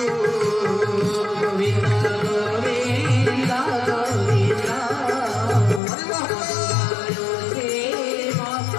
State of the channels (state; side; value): drops out; right; at 5.8 s